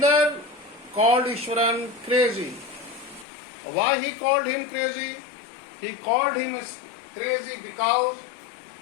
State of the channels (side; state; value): right; drops out; at 3.2 s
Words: called Ishwaran crazy. Why he called him crazy? He called him crazy because